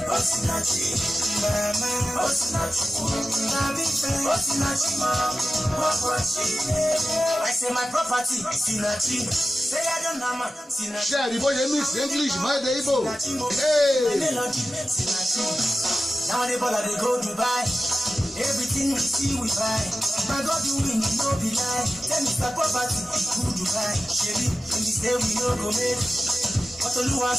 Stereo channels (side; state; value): both; normal; correlation 0.93